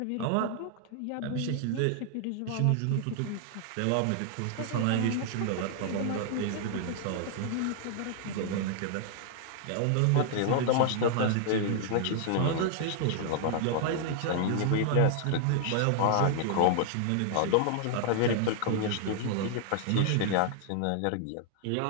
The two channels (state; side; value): different; both; correlation -0.01